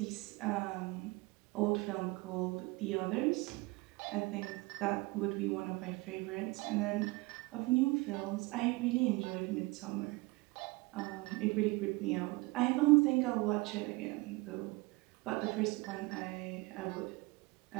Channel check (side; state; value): left; quieter; 24.0 dB